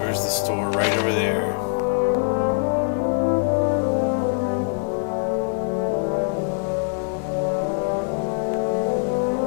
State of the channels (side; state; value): right; silent; 55 dB below the other